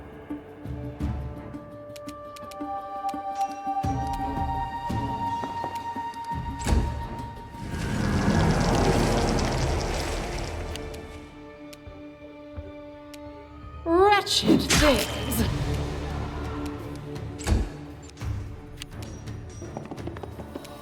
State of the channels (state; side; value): identical; both; correlation 1.00